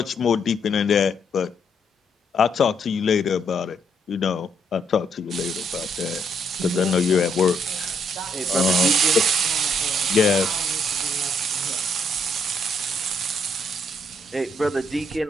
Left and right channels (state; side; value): normal; both; correlation 0.73